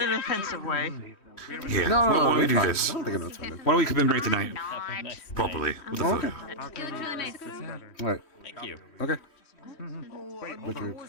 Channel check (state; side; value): late; right; 3.1 ms